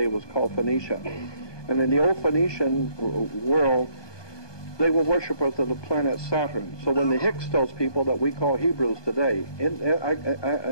was called Phoenicia. And in the old Phoenician world, they were worshippers of the planet Saturn. So when the Hyksos people that we call Hebrews today,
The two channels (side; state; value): right; late; 1.2 ms